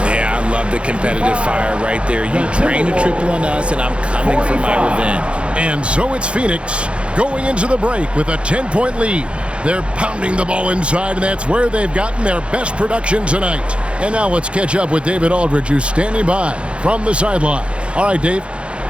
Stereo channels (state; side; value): late; left; 0.058 ms